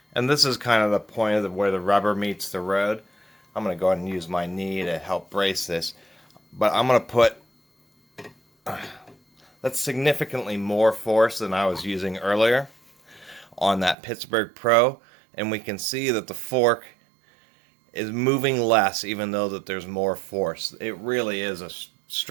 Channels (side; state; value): left; drops out; at 14.0 s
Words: And this is kind of the point of where the rubber meets the road. I'm going to go ahead and use my knee to help brace this, but I'm going to put that's significantly more force than I was using earlier on that Pittsburgh Pro. And we can see that the fork is moving less, even though that there's more force. It really is a